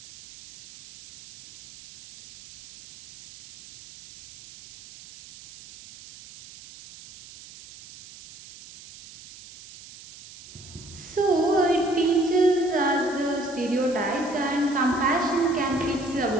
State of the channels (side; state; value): right; noise; hiss, 19 dB below the sound